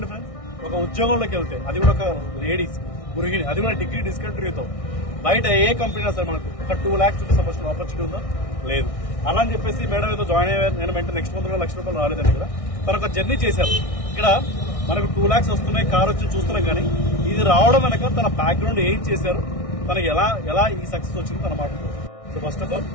ఫ్రెండ్స్, ఒక ఉద్యోగంలోకి వెళ్తే అది కూడా ఒక లేడీస్ గృహిణి, అది కూడా డిగ్రీ డిస్కంటిన్యూతో బయట ఏ కంపెనీ సరే మనకు ఒక 2 lakhs రూపీస్ సంపాదించిన ఆపర్చునిటీ ఉందా? లేదు. అలా అని చెప్పేసి మేడం ఏదో జాయిన్ అయ్యారు, నేను వెంటనే నెక్స్ట్ మంత్ కూడా 1 లక్ష రూపాయలు రాలేదండి. ఇక్కడ తను ఒక జర్నీ చేశారు. ఇక్కడ మనకు 2 lakhs వస్తున్నాయి, కార్ వచ్చి చూస్తున్నాం. కానీ ఇది రావడం వెనక తన బ్యాక్గ్రౌండ్ ఏం చేశారు, తనకి ఎలా ఈ సక్సెస్ వచ్చింది తన మాట్లాడుతుంది. సో ఫస్ట్ ఆఫ్ ఆల్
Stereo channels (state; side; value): late; right; 1.6 ms